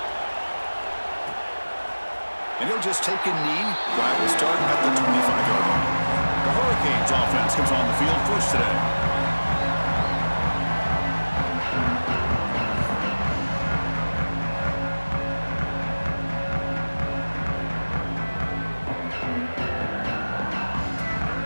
And he'll just take a knee. Drive will start at the 25-yard line. The Hurricanes offense comes on the field first today.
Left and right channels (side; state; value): both; inverted; correlation -1.00